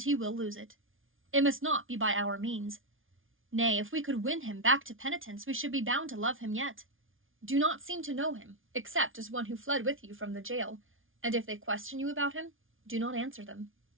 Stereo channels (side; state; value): left; late; 0.58 ms